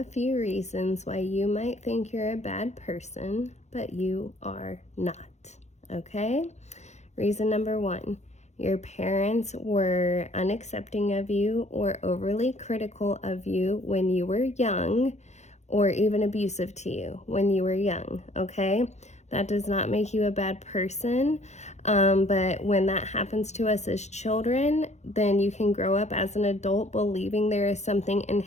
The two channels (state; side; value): late; right; 0.33 ms